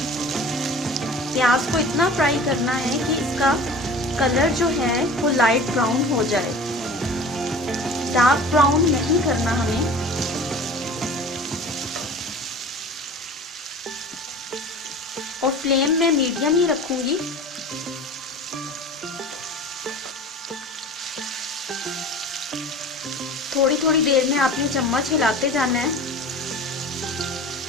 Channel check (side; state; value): both; normal; correlation 0.39